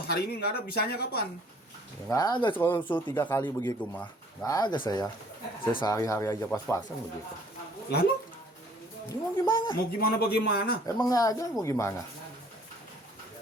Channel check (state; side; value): normal; both; correlation 0.57